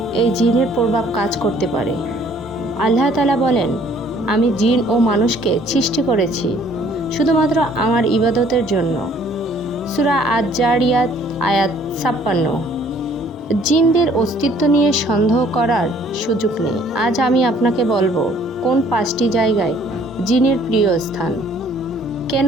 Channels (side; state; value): both; normal; correlation 0.59